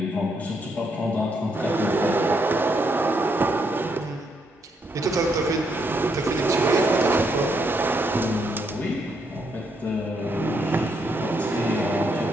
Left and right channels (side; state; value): both; normal; correlation 0.76